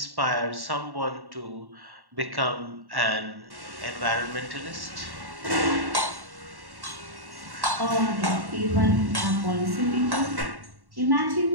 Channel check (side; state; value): left; late; 1.1 ms